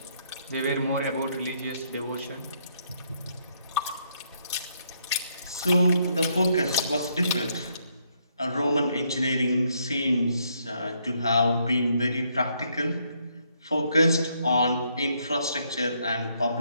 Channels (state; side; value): inverted; both; correlation -0.73